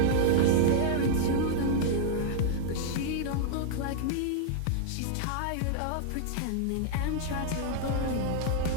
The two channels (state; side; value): different; both; correlation -0.02